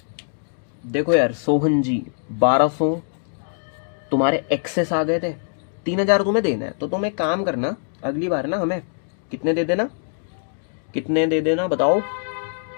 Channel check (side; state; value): right; silent; digital silence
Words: देखो यार सोहन जी, 1200 तुम्हारे एक्सेस आ गए थे, 3000 तुम्हें देना है, तो तुम एक काम करना, अगली बार ना हमें कितने दे देना, कितने दे देना बताओ?